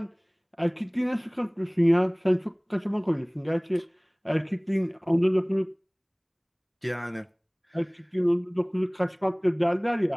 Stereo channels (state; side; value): identical; both; correlation 1.00